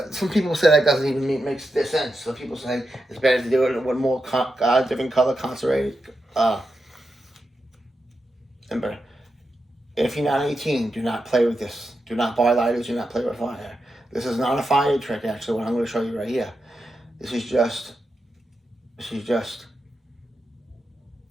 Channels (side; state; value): both; normal; correlation 0.88